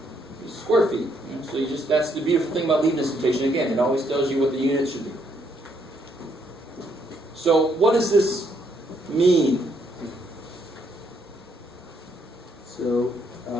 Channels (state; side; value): normal; both; correlation 0.72